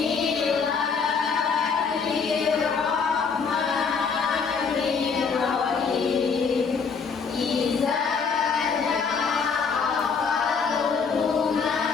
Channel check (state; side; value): quieter; right; 5.6 dB